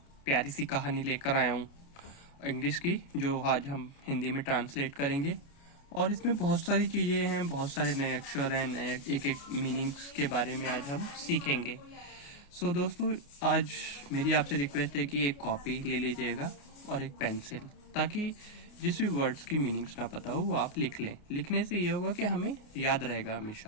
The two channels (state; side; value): late; right; 29 ms